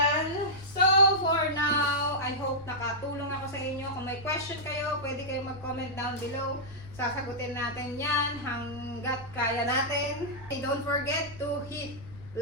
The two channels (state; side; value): noise; right; rumble, 20 dB below the sound